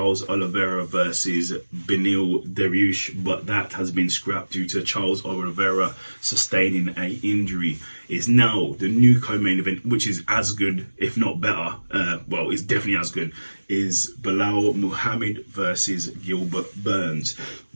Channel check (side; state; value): both; inverted; correlation -1.00